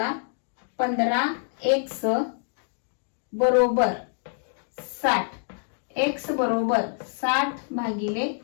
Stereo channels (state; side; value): silent; right; digital silence